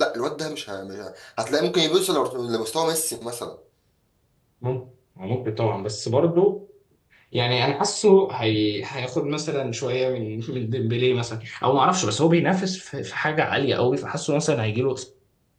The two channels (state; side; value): identical; both; correlation 1.00